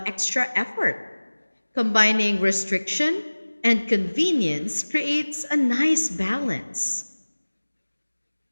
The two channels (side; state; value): both; inverted; correlation -1.00